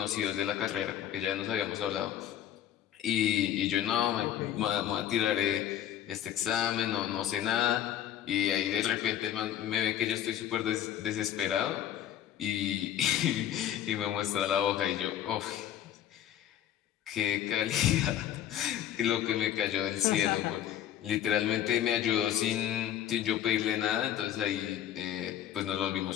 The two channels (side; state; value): right; quieter; 11.0 dB